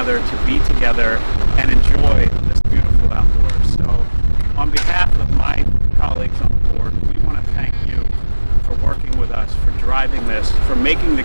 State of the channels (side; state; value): both; inverted; correlation -1.00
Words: to be together and enjoy this beautiful outdoors. So on behalf of my colleagues on the board, we want to thank you for working with us, for driving this, for making the